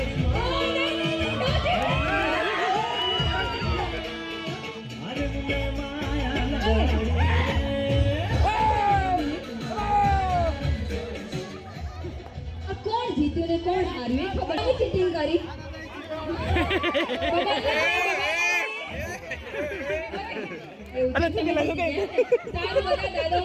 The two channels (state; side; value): identical; both; correlation 1.00